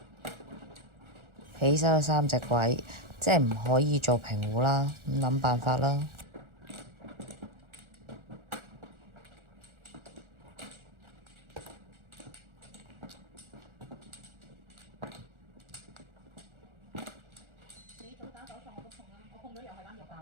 起手有3隻鬼，即係唔可以做平壺啦，咁諗辦法啦。你早打手術我都碰啦，我碰咗又係單碟單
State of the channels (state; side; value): late; left; 1.4 ms